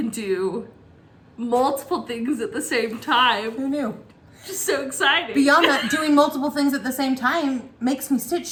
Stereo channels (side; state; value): both; identical; correlation 1.00